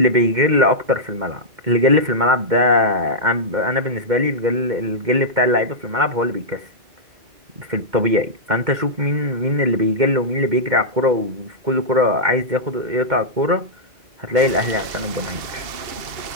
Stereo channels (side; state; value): left; late; 2.1 ms